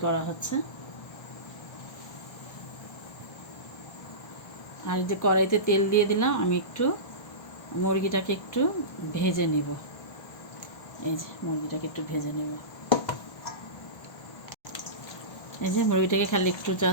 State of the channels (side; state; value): right; late; 1.3 ms